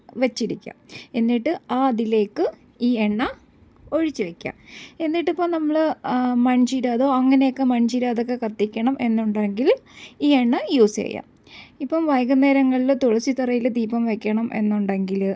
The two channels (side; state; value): both; identical; correlation 1.00